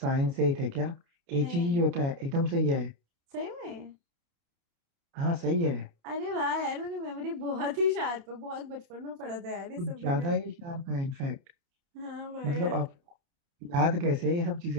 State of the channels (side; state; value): left; late; 29 ms